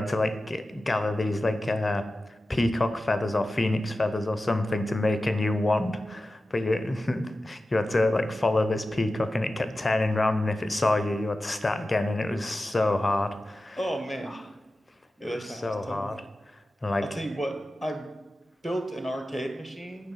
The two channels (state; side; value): normal; both; correlation 0.94